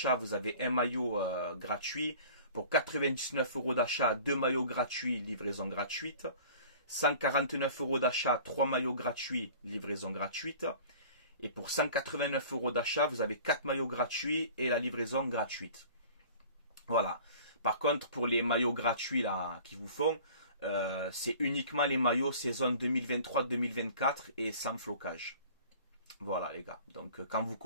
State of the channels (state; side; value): inverted; both; correlation -0.45